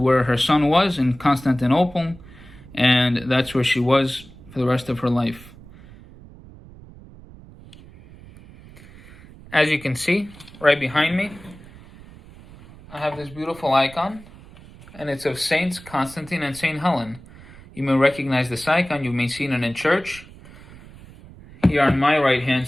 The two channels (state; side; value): noise; right; rumble, 20 dB below the sound